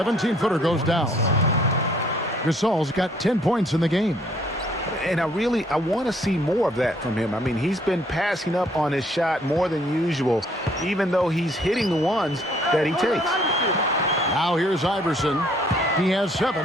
goes down. Gasol's got 10 points in the game. And I want to see more of that from him. I mean, he's been passing up on his shot more than usual, even though he's hitting the ones that he takes. Now here's Iverson. He has 7.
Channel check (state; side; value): normal; both; correlation 0.63